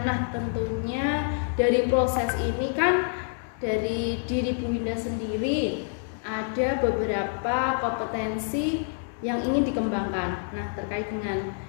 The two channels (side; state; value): right; silent; 60 dB below the other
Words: Nah, tentunya dari proses ini kan dari diri Bu Winda sendiri ada beberapa kompetensi yang ingin dikembangkan. Nah, terkait dengan